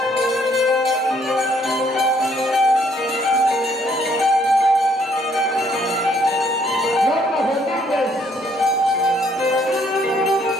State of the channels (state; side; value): normal; both; correlation 0.66